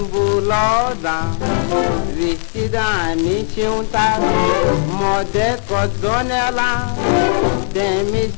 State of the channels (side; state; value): right; silent; digital silence